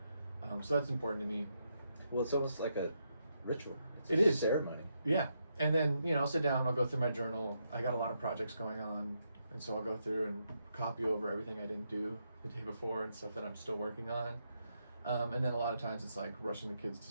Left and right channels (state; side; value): inverted; both; correlation -0.81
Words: So that's important to me. Well, it's almost like a ritual. It is. Ceremony. Yeah. And then, I'll sit down, I'll go through my journal. I got a lot of projects going on. And so I'll go through and copy over everything I didn't do the day before and stuff that I'm still working on. And then a lot of times it's like rushing the